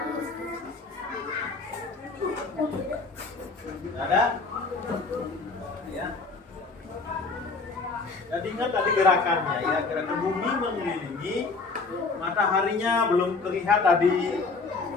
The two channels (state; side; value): quieter; right; 4.1 dB